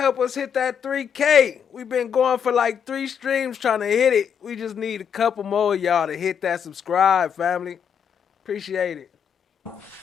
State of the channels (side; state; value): right; quieter; 7.7 dB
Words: us hit that 3K. We've been going for like 3 streams trying to hit it. We just need a couple more of y'all to hit that subscribe, family. Appreciate it.